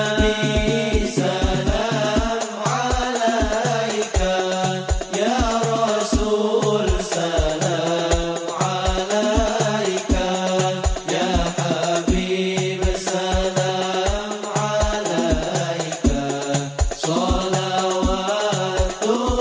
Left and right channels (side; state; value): both; identical; correlation 1.00